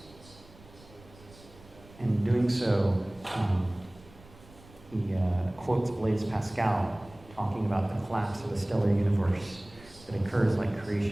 And in doing so, he quotes Blaise Pascal talking about the collapse of a stellar universe that occurs like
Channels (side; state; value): right; noise; rumble, 23 dB below the sound